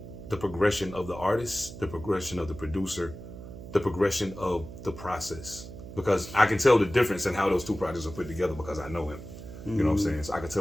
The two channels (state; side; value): noise; right; hum, 13 dB below the sound